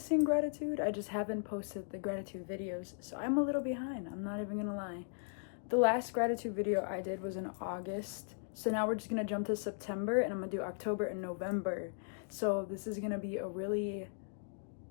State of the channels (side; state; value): right; silent; digital silence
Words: gratitude. I just haven't posted the gratitude videos, so I'm a little behind. I'm not even gonna lie. The last gratitude video I did was in August, so now we're just gonna jump to September, and I'm gonna do October and November. So this is gonna be a really